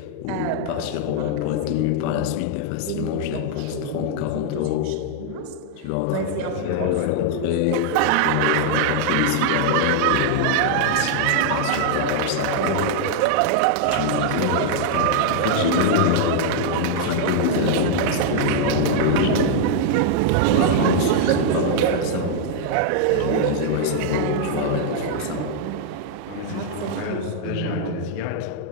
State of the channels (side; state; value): both; different; correlation 0.00